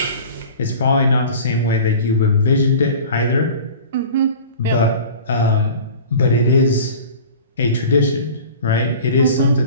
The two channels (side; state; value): both; inverted; correlation -0.40